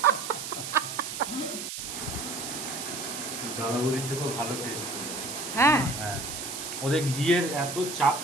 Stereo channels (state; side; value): noise; right; hiss, 6 dB below the sound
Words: দাদাবুদির থেকেও ভালো টেস্ট। হ্যাঁ হ্যাঁ, ওদের ঘিয়ের এত চাপ